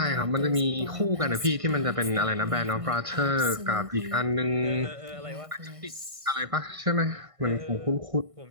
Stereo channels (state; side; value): late; left; 1.5 ms